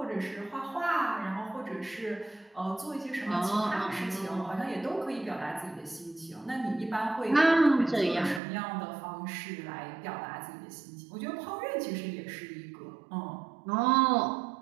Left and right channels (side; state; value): left; drops out; at 8.4 s